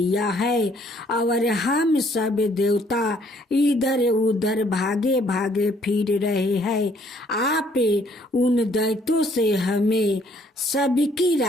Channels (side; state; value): both; normal; correlation 0.64